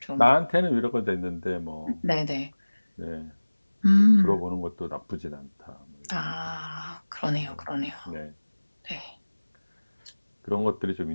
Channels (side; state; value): both; inverted; correlation -1.00